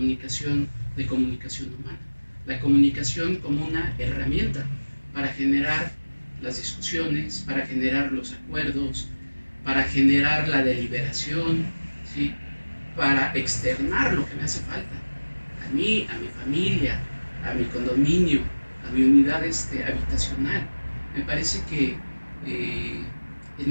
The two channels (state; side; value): inverted; both; correlation -1.00